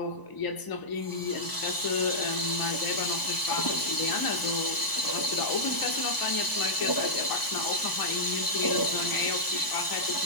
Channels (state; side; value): late; right; 1.0 ms